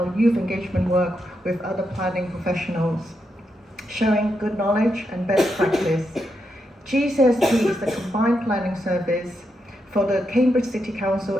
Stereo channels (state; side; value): normal; both; correlation 0.83